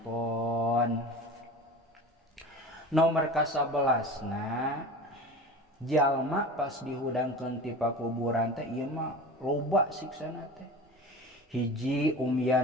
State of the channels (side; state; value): both; normal; correlation 0.34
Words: Nomor ka-11 na jalma pas dihudangkeun ti pakuburan teh ieu mah loba siksana teh hiji